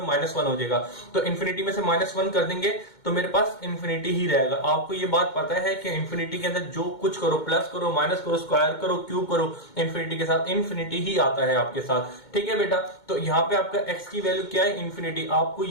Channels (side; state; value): right; late; 2.2 ms